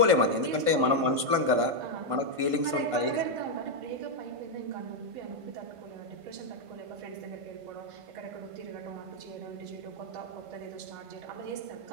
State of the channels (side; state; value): left; late; 1.5 ms